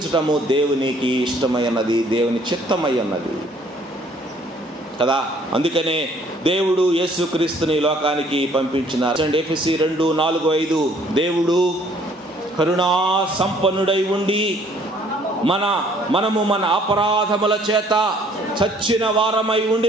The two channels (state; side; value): normal; both; correlation 0.60